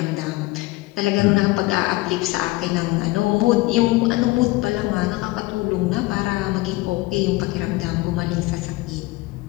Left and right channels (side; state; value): right; quieter; 20.5 dB